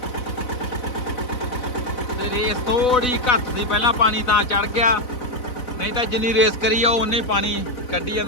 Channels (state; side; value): late; right; 4.0 ms